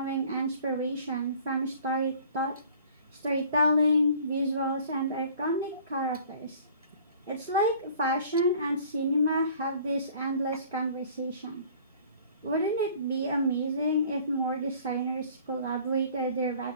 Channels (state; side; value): inverted; both; correlation -0.51